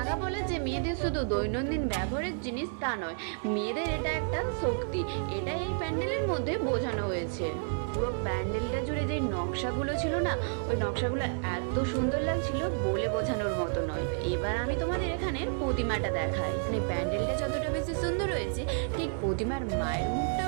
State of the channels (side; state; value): left; silent; 57 dB below the other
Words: পলা যে মেয়েদের শুধু দৈনন্দিন ব্যবহারের জিনিস তা নয়, মেয়েদের এটা একটা শক্তি, এটাই এই প্যান্ডেলের মধ্যে বোঝানো হয়েছে। পুরো প্যান্ডেলটা জুড়ে যে নকশাগুলো ছিল না, ওই নকশাগুলো এত সুন্দর লাগছিল বলে বোঝানোর মতো নয়। এবার আমি তোমাদের এখানের প্রতিমাটা দেখাই। মানে প্যান্ডেলটা যতটা বেশি সুন্দর হয়েছে, ঠিক প্রতিমার মায়ের